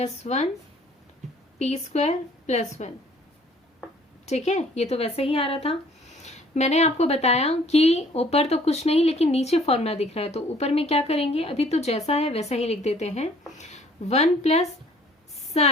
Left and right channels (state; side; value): normal; both; correlation 0.57